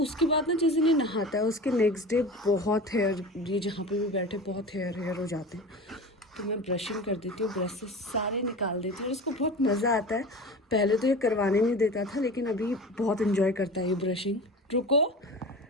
बाद ना जिस दिन ये नहाता है उसके नेक्स्ट डे बहुत हेयर, ये जहाँ पे भी बैठे बहुत हेयर हो जाते हैं, तो मैं ब्रशिंग कर देती हूँ, ब्रश से सारे निकाल देती हूँ और इसको बहुत मज़ा आता है। पहले तो ये करवाने नहीं देता था, लेकिन अभी बहुत इन्जॉय करता है ये ब्रशिंग। रुको,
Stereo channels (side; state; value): both; normal; correlation 0.33